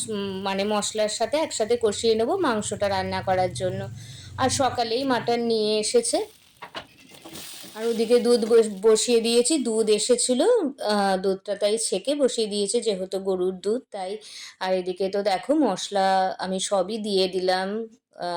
মানে মশলার সাথে একসাথে কষিয়ে নেবো মাংসটা রান্না করার জন্য। আর সকালেই মাটন নিয়ে এসেছে, আর ওদিকে দুধ বসিয়ে দিয়েছি, দুধ এসেছিল, দুধটা তাই ছেঁকে বসিয়ে দিয়েছে যেহেতু গরুর দুধ তাই। আর এদিকে তো দেখো মশলা আমি সবই দিয়ে দিলাম,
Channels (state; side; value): identical; both; correlation 1.00